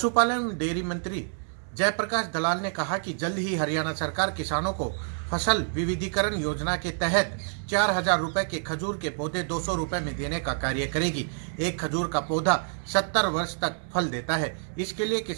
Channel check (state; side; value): silent; left; digital silence